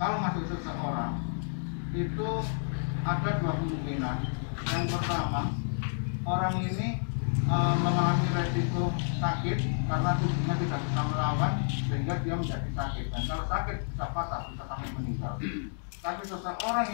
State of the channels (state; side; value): silent; right; digital silence